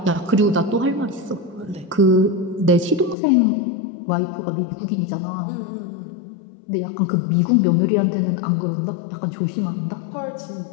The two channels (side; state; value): right; drops out; at 3.2 s